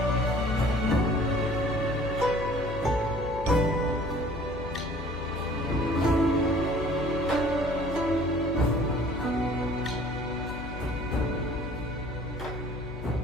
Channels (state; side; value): noise; left; hum, 10 dB below the sound